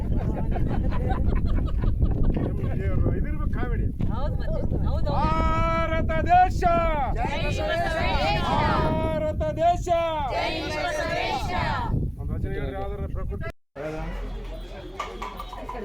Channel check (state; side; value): identical; both; correlation 1.00